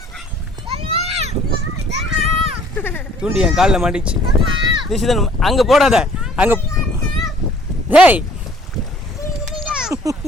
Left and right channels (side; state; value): both; normal; correlation 0.57